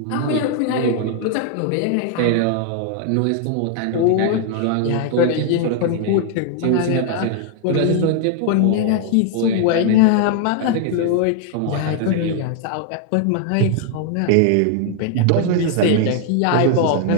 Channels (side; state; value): both; different; correlation 0.00